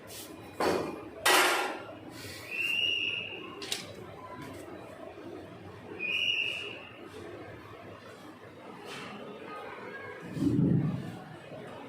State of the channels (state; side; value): identical; both; correlation 1.00